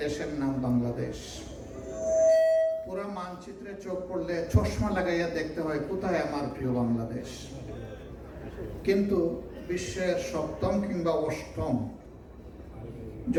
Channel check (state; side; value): identical; both; correlation 1.00